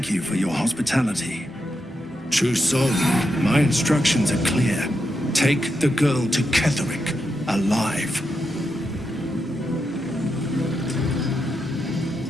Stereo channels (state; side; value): normal; both; correlation 0.85